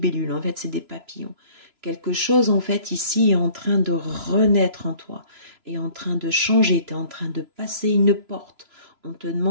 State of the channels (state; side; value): late; left; 3.0 ms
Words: en fait, c'est des papillons. Quelque chose, en fait, ici est en train de renaître en toi, est en train de changer, tu es en train de passer une porte. On te